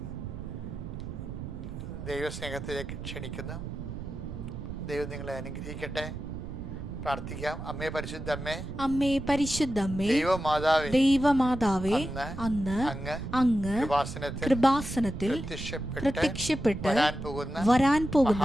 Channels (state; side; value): noise; right; rumble, 9 dB below the sound